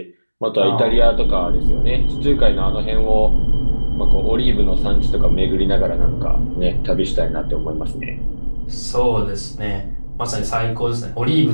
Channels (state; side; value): inverted; both; correlation -1.00